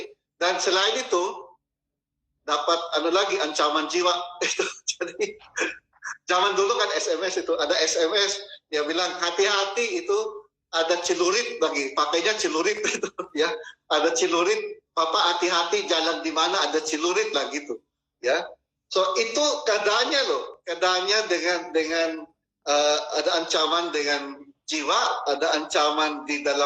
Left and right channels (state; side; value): identical; both; correlation 1.00